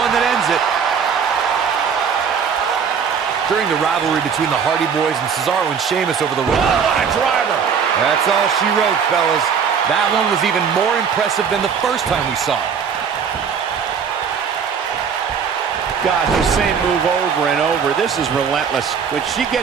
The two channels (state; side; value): quieter; left; 6.7 dB